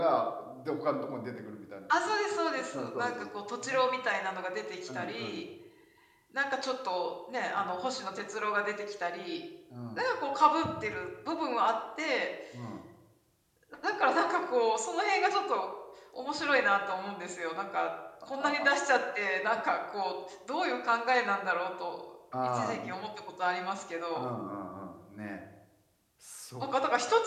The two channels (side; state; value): both; identical; correlation 1.00